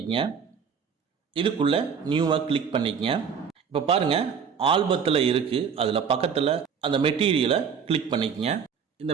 இதுக்குள்ள நியூவை கிளிக் பண்ணிக்கங்க. இப்போ பாருங்க, ஆல்பத்தில் இருக்கு. அதில் பக்கத்தில் அந்த மெட்டீரியலை கிளிக் பண்ணிக்கங்க. இந்த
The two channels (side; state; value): left; quieter; 6.8 dB